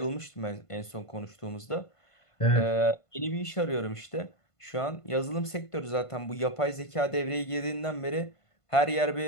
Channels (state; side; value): late; right; 1.5 ms